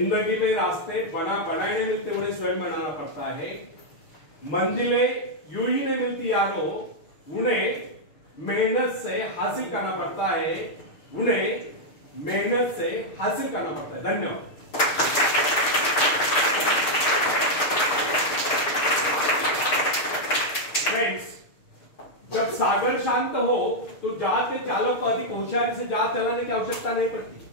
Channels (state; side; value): late; right; 6.6 ms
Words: में रास्ते बनाए नहीं मिलते, उन्हें स्वयं बनाना पड़ता है। मंजिलें यूं ही नहीं मिलती यारो, उन्हें मेहनत से हासिल करना पड़ता है, उन्हें मेहनत से हासिल करना पड़ता है। धन्यवाद। फ्रेंड्स, जब सागर शांत हो तो जहाज के चालक को अधिक होशियारी से जहाज चलाने की आवश्यकता नहीं पड़ती,